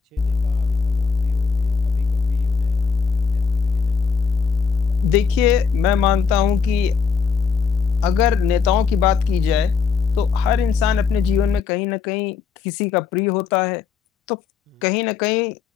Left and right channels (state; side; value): quieter; right; 5.7 dB